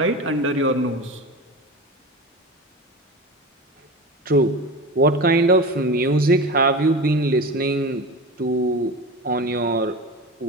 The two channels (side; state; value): both; normal; correlation 0.29